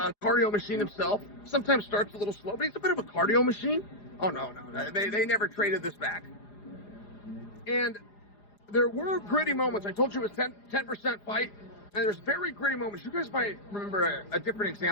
cardio machine himself. Sometimes starts a little slow, but he's a bit of a cardio machine. Oh, no. They never traded this back. And there were gritty moments. I told you it was 10% fight, and there's very gritty moments. You guys might remember a different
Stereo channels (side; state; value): right; late; 4.9 ms